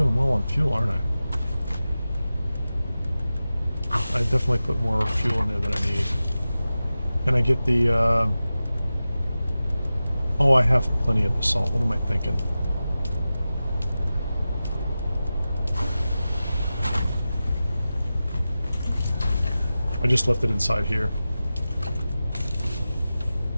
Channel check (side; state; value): both; inverted; correlation -0.94